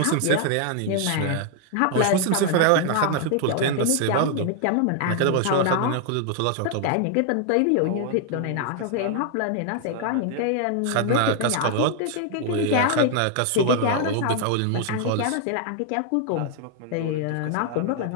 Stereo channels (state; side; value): different; both; correlation 0.00